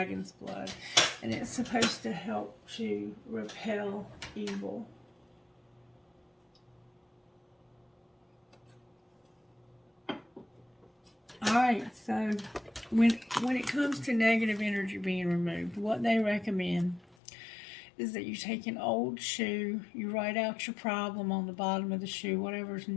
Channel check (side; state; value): right; drops out; at 17.2 s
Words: Blood. And it's supposed to help to repel evil. Alright, so when it comes to negative energy being removed, what they recommend is that you take an old shoe, you write out your problem on the bottom of the shoe, whatever's